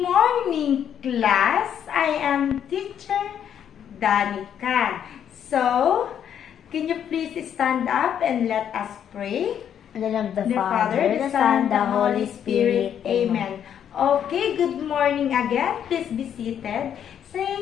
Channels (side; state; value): right; quieter; 9.1 dB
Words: class, I am teacher Danica. So, can you please stand up and let us pray? In the name of the Father, the Son, the Holy Spirit. Amen. Okay, good morning again. Please be seated.